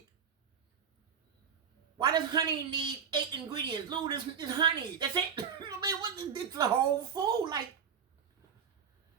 honey need 8 ingredients? Lou, this is honey. That's it. I mean, it's the whole food. Like,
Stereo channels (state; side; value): quieter; left; 7.1 dB